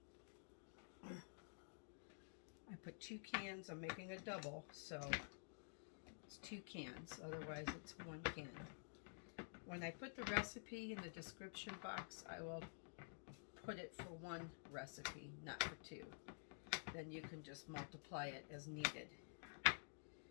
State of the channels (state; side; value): silent; right; digital silence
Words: I put 2 cans. I'm making a double, so it's 2 cans. Otherwise, it's 1 can. When I put the recipe in the description box, I will put it for 1 recipe, not for 2. Then you can just multiply it as needed.